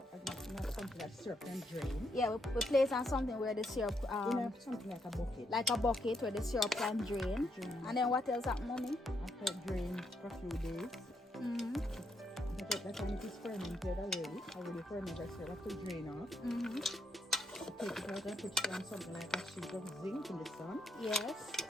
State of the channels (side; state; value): both; normal; correlation 0.77